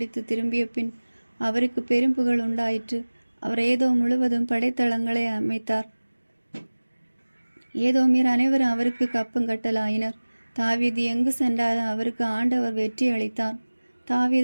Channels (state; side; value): inverted; both; correlation -1.00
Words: திரும்பிய பின் அவருக்கு பெரும் புகழ் உண்டாயிற்று. அவர் ஏதோம் முழுவதும் படைத்தளங்களை அமைத்தார். ஏதோமியர் அனைவரும் அவருக்கு கப்பங்கட்டலாயினர். தாவீது எங்கு சென்றாலும் அவருக்கு ஆண்டவர் வெற்றி அளித்தார்.